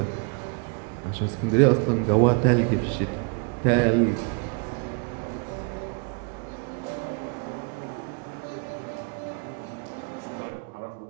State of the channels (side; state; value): left; quieter; 35.4 dB